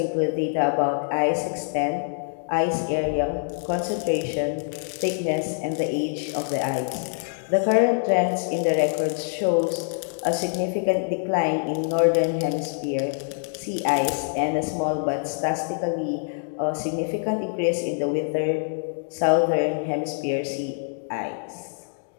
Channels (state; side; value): silent; right; digital silence